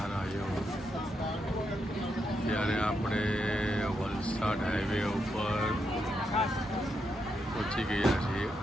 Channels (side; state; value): both; normal; correlation 0.82